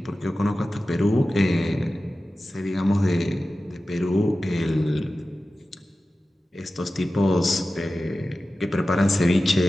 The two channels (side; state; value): both; normal; correlation 0.94